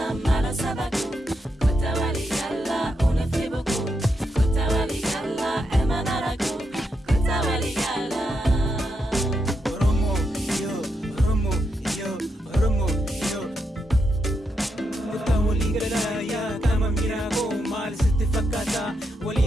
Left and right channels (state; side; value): normal; both; correlation 0.82